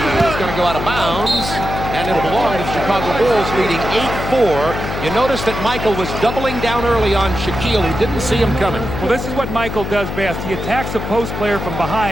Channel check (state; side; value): noise; left; hum, 5 dB below the sound